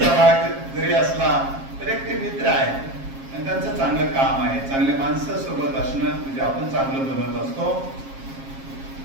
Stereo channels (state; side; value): late; left; 7.4 ms